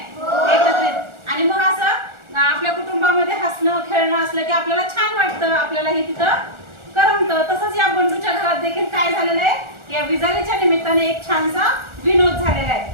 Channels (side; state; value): left; late; 1.4 ms